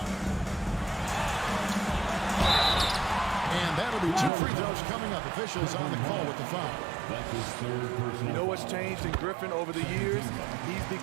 And that'll be 2 free throws coming up. Officials on the call with the foul. That's his third personal. You know what's changed in Griffin over the years? He's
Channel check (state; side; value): drops out; left; at 4.3 s